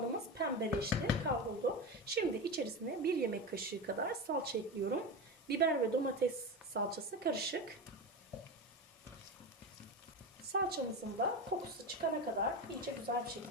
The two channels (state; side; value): normal; both; correlation 0.21